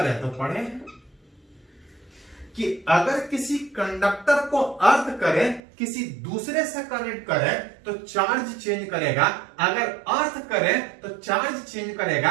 तो पढ़े कि अगर किसी कंडक्टर को अर्थ करे, किसी दूसरे से कनेक्ट करे तो चार्ज चेंज करेगा, अगर अर्थ करे तो चार्ज चेंज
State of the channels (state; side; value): drops out; left; at 5.6 s